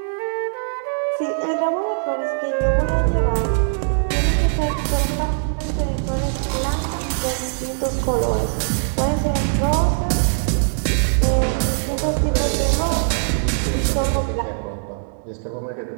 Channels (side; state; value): left; silent; digital silence